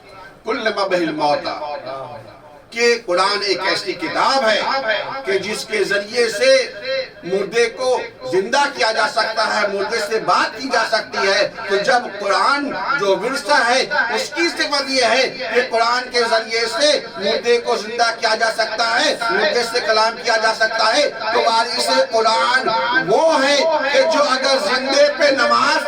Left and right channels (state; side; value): identical; both; correlation 1.00